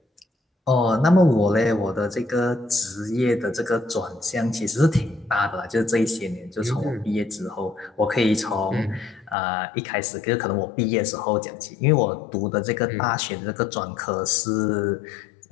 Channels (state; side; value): drops out; right; at 9.3 s